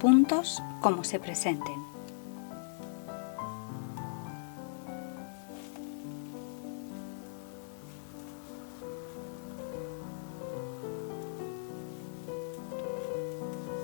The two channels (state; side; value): silent; right; 53 dB below the other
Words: como se presenten.